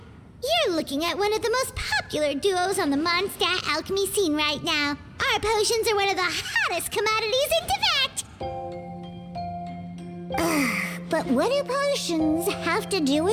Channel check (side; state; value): both; identical; correlation 1.00